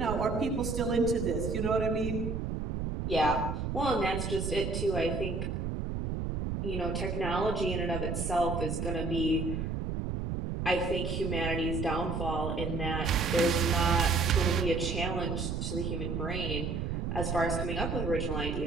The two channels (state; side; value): noise; right; rumble, 2 dB below the sound